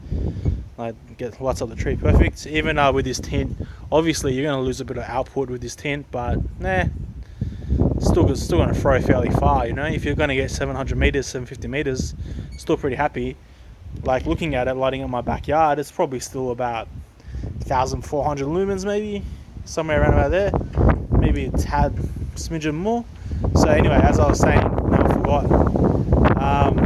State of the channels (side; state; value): both; identical; correlation 1.00